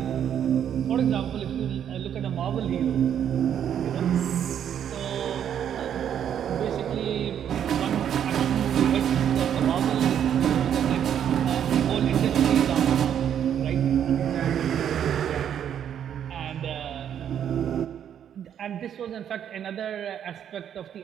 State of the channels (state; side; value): quieter; left; 9.3 dB